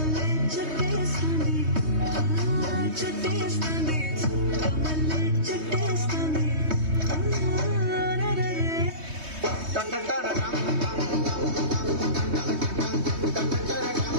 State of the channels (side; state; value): left; late; 3.2 ms